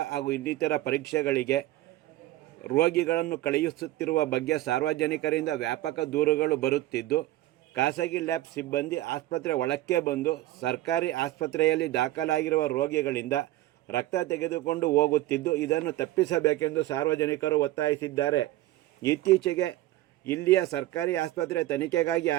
ಹಾಗೂ ಇನ್ನಿತರ ಪರೀಕ್ಷೆಗಳಿಗೆ ರೋಗಿಗಳನ್ನು ಕಳುಹಿಸುತ್ತಿರುವ ಬಗ್ಗೆ ಸಾರ್ವಜನಿಕರಿಂದ ವ್ಯಾಪಕ ದೂರುಗಳು ಬರುತ್ತಿದ್ದು, ಖಾಸಗಿ ಲ್ಯಾಬ್ ಸಿಬ್ಬಂದಿ ಆಸ್ಪತ್ರೆ ಒಳಕ್ಕೆ ಬಂದು ಸರ್ಕಾರಿ ಆಸ್ಪತ್ರೆಯಲ್ಲಿ ದಾಖಲಾಗಿರುವ ರೋಗಿಗಳಿಂದ ರಕ್ತ ತೆಗೆದುಕೊಂಡು ಹೋಗುತ್ತಿದ್ದು, ಇದನ್ನು ತಪ್ಪಿಸಬೇಕೆಂದು ಸಾರ್ವಜನಿಕರು ಒತ್ತಾಯಿಸಿದ್ದಾರೆ. ಇತ್ತೀಚೆಗೆ ಇಲ್ಲಿಯ ಸರ್ಕಾರಿ ಆಸ್ಪತ್ರೆ ತನಿಖೆಗಾಗಿ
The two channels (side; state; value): left; quieter; 15.8 dB